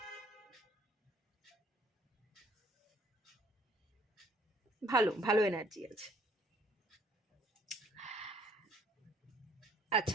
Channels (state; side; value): normal; both; correlation 0.60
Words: ভালো ভালো এনার্জি আছে।